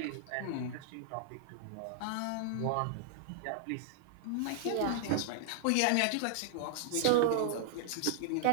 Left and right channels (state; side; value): different; both; correlation -0.01